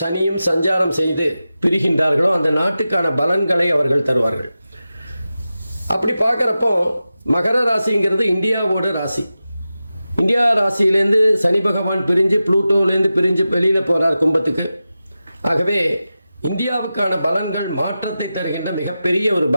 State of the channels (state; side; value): inverted; both; correlation -0.93